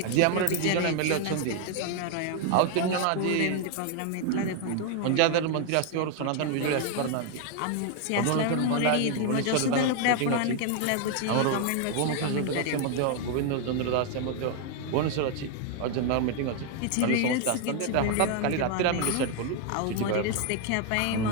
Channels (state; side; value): different; both; correlation 0.00